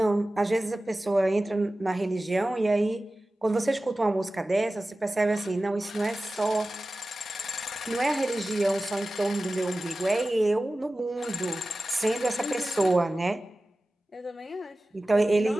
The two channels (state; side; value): normal; both; correlation 0.96